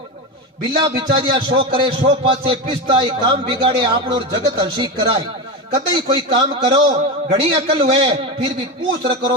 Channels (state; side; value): normal; both; correlation 0.17